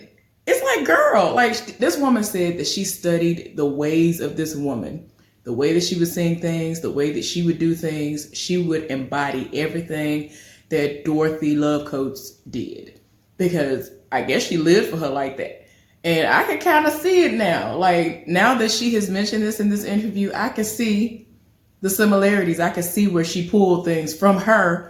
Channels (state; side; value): identical; both; correlation 1.00